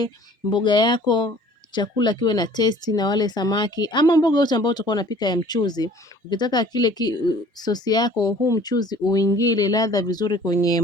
mboga yako chakula kiwe na testi na wale samaki ama mboga yote ambayo utakuwa unapika ya mchuzi, ukitaka kile sosi yako huu mchuzi uingie ladha vizuri kwenye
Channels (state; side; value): normal; both; correlation 0.51